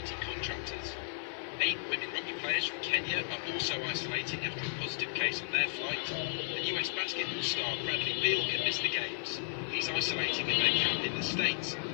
contractors. 8 women rugby players from Kenya are also isolating after a positive case on their flight. And US basketball star Bradley Beal can miss the games. He's isolating at their camp in the States,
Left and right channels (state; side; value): silent; right; digital silence